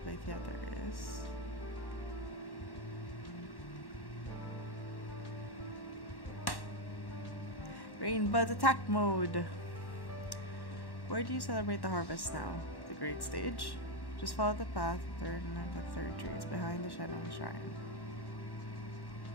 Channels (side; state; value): right; late; 1.1 ms